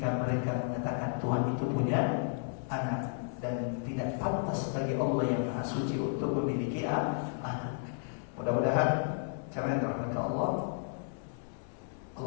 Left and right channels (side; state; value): right; silent; digital silence